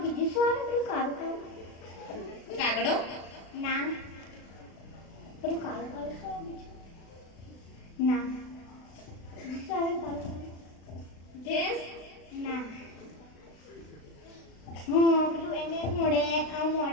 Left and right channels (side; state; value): right; late; 36 ms